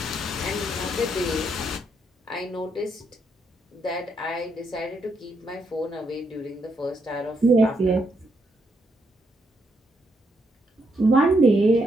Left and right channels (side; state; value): both; normal; correlation 0.78